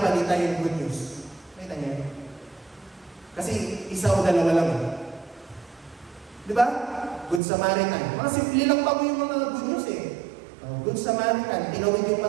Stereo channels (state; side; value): drops out; left; at 7.4 s